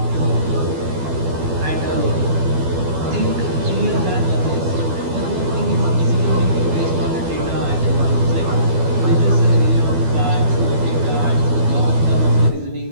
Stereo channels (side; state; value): left; late; 12 ms